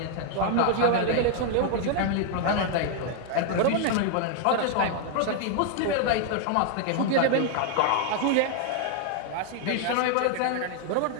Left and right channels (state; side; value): different; both; correlation 0.00